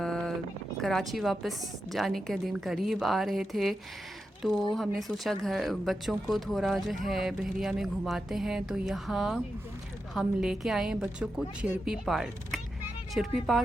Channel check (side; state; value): both; normal; correlation 0.88